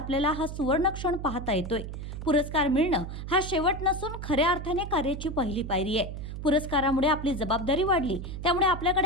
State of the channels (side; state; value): right; noise; hum, 8 dB below the sound